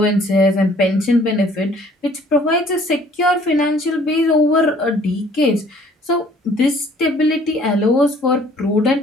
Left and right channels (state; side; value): normal; both; correlation 0.57